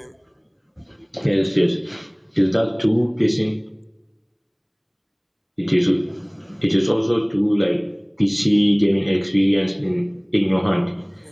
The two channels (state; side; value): identical; both; correlation 1.00